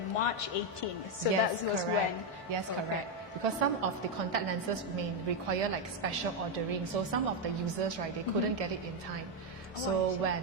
March 18th. So Yes, that was correct. when? Yes, Okay. correct. Because some of the contact lenses may require like special ordering. So some of the users, right, they couldn't get it in time. So when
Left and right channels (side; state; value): both; normal; correlation 0.04